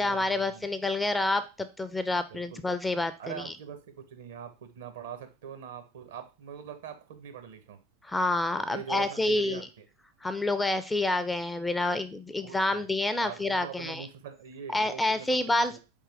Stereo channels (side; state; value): both; normal; correlation 0.82